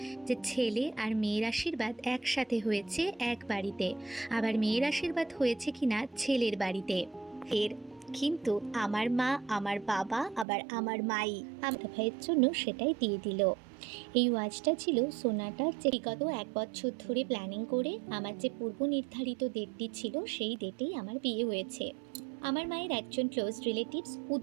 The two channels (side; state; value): left; drops out; at 10.5 s